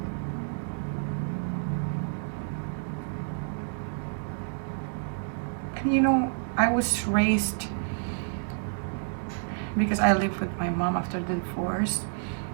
And you know, I was raised, because I lived with my mom after the divorce,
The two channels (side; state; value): left; silent; 58 dB below the other